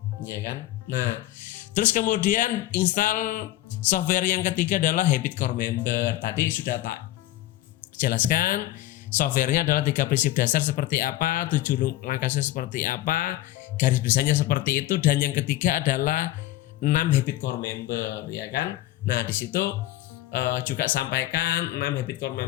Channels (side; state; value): right; quieter; 15.3 dB